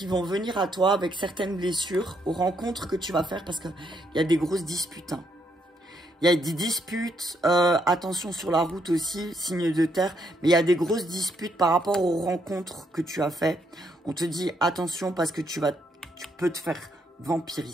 vont venir à toi avec certaines blessures, aux rencontres que tu vas faire parce qu'il y a des grosses disputes. Hein. Il y a des disputes, attention sur la route aussi, signe de terre, mais il y a des grosses disputes par rapport aux rencontres que tu as fait. On te dit attention parce que tu peux te faire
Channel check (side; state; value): both; normal; correlation 0.74